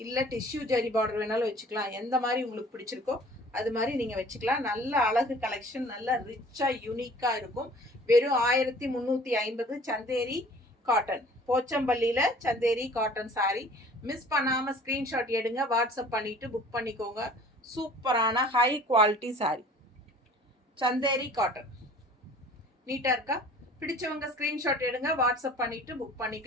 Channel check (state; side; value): normal; both; correlation 0.49